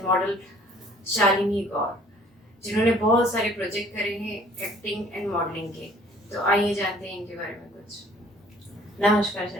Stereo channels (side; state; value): both; normal; correlation 0.55